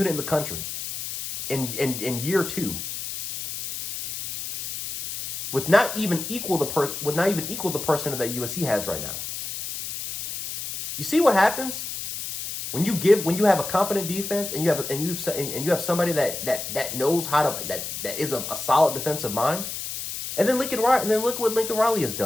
in the country in year 2. With not even equal the person that USC has right now. You see what happens when you have a competent defense and you have somebody that knows how to that is a solid defensive mind, and then look what Lincoln Riley has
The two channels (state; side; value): noise; left; hiss, 6 dB below the sound